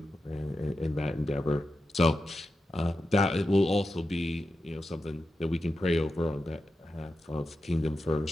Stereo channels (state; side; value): normal; both; correlation 0.90